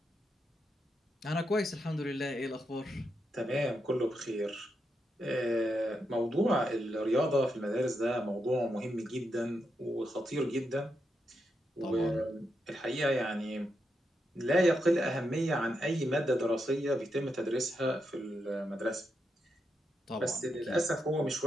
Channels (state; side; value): normal; both; correlation 0.84